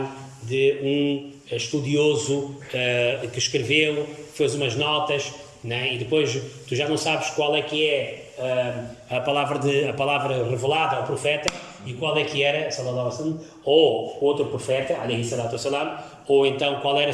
de um estudioso que escreveu, fez umas notas, né? E depois tu já não sabes qual é que é a palavra revelada ao profeta e qual é que era, sallallahu alaihi wasallam, ou outro profeta, alaihi salatu wassalam, ou então qual era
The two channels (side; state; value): both; identical; correlation 1.00